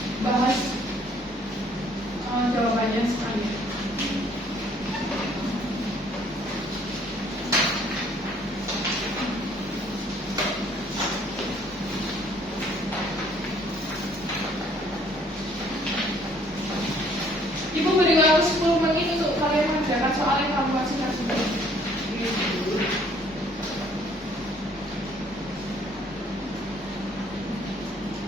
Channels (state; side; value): normal; both; correlation 0.61